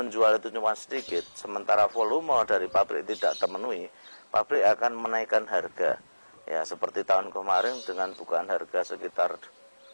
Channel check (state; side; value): inverted; both; correlation -1.00